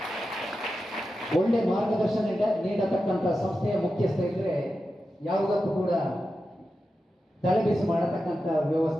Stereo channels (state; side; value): normal; both; correlation 0.91